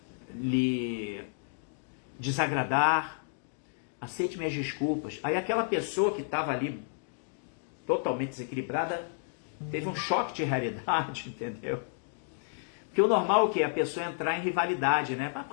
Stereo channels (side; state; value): right; silent; digital silence